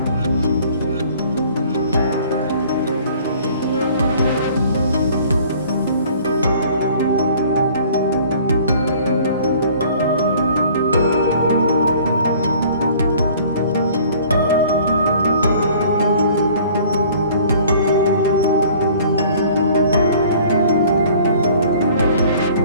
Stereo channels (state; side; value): inverted; both; correlation -0.52